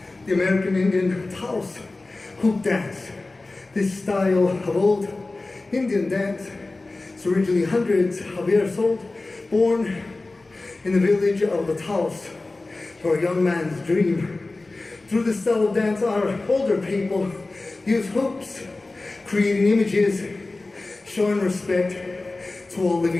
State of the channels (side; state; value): right; quieter; 3.2 dB